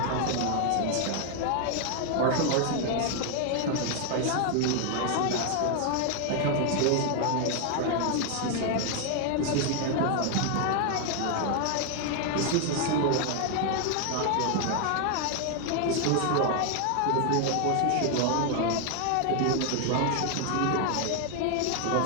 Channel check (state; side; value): different; both; correlation 0.00